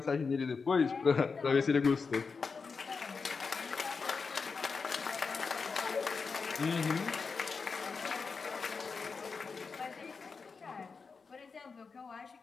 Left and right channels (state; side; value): quieter; right; 4.9 dB